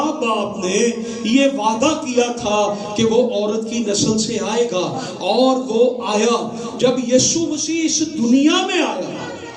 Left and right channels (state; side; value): identical; both; correlation 1.00